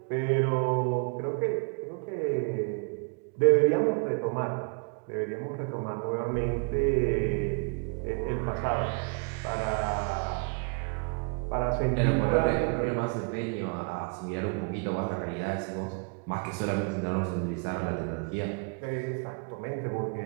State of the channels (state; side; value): quieter; left; 37.0 dB